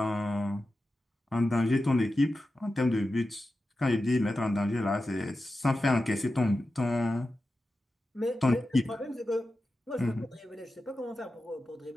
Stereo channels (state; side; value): normal; both; correlation 0.92